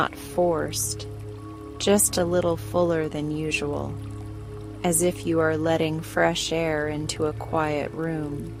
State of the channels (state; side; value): identical; both; correlation 1.00